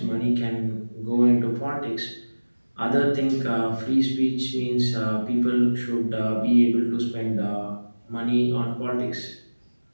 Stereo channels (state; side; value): inverted; both; correlation -1.00